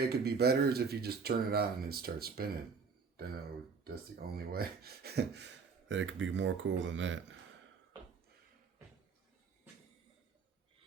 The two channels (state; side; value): quieter; left; 5.3 dB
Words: it could be better is if you just turn it on and it starts spinning. That's the only way that it could be more cool than that.